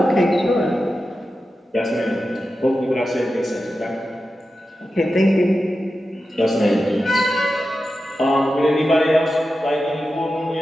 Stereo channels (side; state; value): both; normal; correlation 0.92